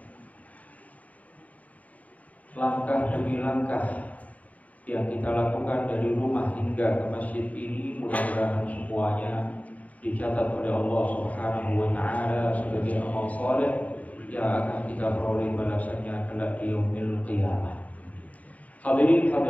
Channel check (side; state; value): right; late; 0.071 ms